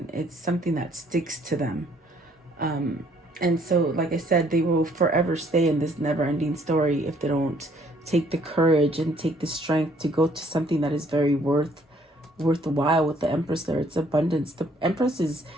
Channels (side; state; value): both; normal; correlation 0.63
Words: it's something that sticks to them. And so, like I said, they will forever stay in this never-ending story if they don't take the courage and take the strength to go to something that is very worthwhile. With the Empress there, it's abundance. The Empress is,